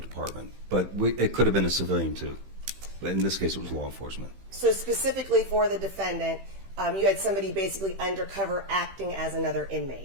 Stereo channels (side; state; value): left; late; 15 ms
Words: But it could have been a civilian too. But in this case, it was law enforcement. So specifically for the defendant, you had somebody basically undercover acting as another inmate,